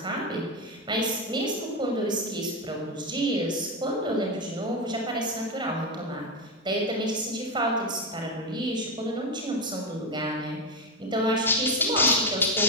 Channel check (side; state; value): both; normal; correlation 0.11